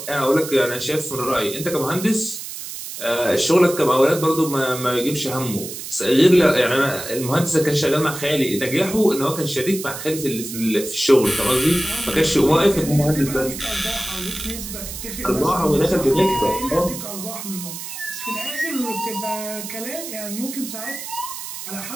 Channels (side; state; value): right; noise; hiss, 9 dB below the sound